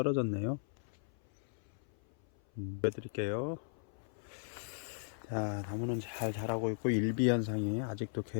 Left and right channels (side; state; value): right; silent; 53 dB below the other